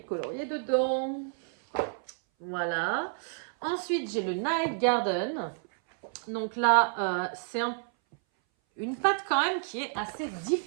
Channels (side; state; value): left; silent; 58 dB below the other